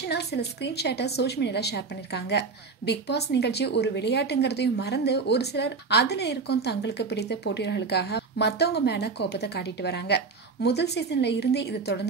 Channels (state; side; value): quieter; left; 4.6 dB